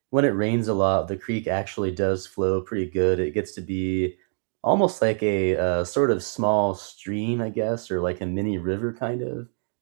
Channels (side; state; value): left; silent; 62 dB below the other